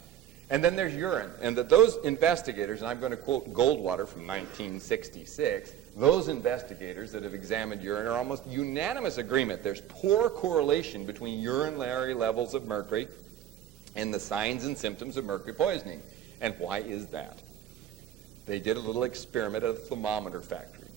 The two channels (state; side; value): quieter; left; 10.8 dB